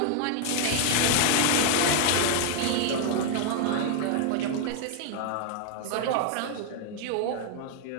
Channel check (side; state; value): both; different; correlation 0.00